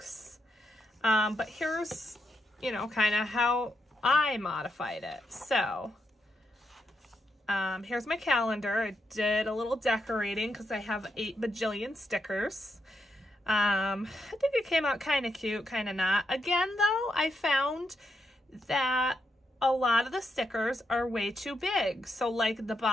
But here's, you know, kind of how I modified it. So, here's my calendar. I did a little decorating because I have 8 bajillion stickers. I think it came out kind of cute, kind of not. Again, though, I found that a lot of the stickers are way too big. So like the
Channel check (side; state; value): both; normal; correlation 0.82